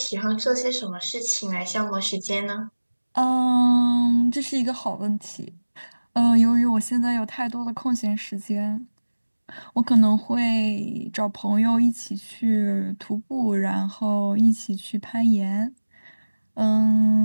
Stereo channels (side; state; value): both; inverted; correlation -1.00